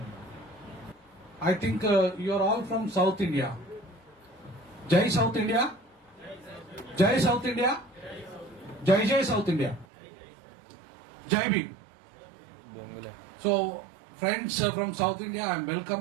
I think you are all from South India. Jai South India. Jai South India. Jai Jai South India. Jai Bhim. So friends from South India, I am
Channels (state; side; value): drops out; left; at 9.9 s